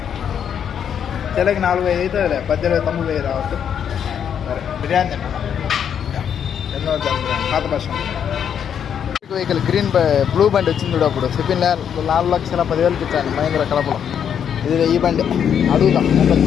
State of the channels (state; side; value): quieter; right; 8.4 dB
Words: చెల్లకి 4,500 అవుతుందిలే 18,900 రావచ్చు. సరే బిర్యానీ తిన్నా ఎన్నో పాత బస్ వెహికల్ గ్రీన్ బ్లూ బండి వచ్చింది చూడు. అప్పుడు చెప్పింది 4,10,000 ఇచ్చాను మహేంద్ర కడపలో. ఇది ఈ బండి అడుగుతాం.